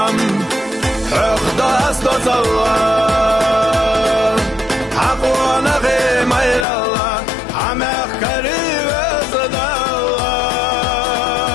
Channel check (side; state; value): right; drops out; at 6.7 s